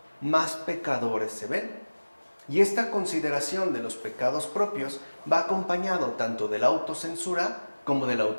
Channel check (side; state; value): both; inverted; correlation -1.00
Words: más pecadores se ven. Y esta consideración de los pecados propios va acompañado tanto de la autocensura como de la